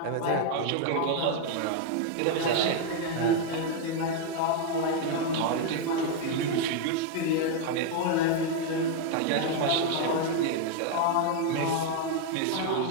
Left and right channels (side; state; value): both; different; correlation 0.00